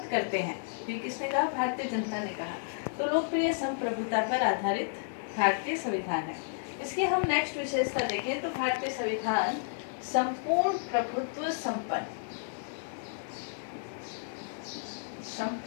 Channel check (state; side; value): silent; right; digital silence